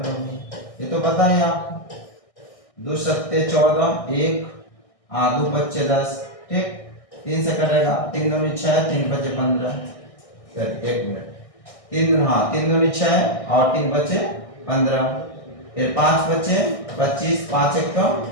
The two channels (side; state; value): right; late; 1.6 ms